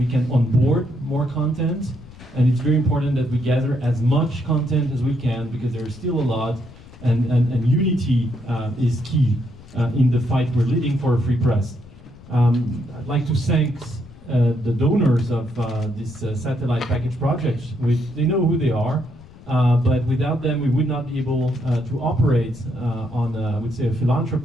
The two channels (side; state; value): left; noise; rumble, 21 dB below the sound